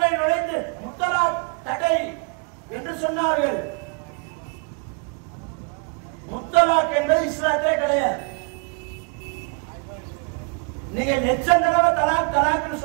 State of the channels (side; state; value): left; quieter; 35.3 dB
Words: நுழைந்து முத்தலாக் தடை என்று சொன்னார்கள். முத்தலாக் என்பது இஸ்லாத்திலே கிடையாது. நீங்க லட்சம் தடவை தலாக் தலாக்னு